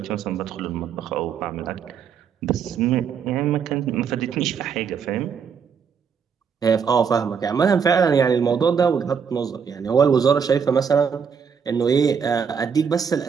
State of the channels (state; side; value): quieter; left; 6.7 dB